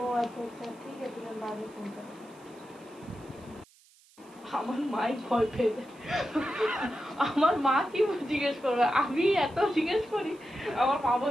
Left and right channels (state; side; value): noise; right; hiss, 28 dB below the sound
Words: আচ্ছা আচ্ছা, ঠিক আছে, বাড়ি ফোন করো। আমার মাই ভয় পেয়ে যায়। আমার মা কি জিজ্ঞেস করবে, আমি এত জিজ্ঞেস করি। আমার মা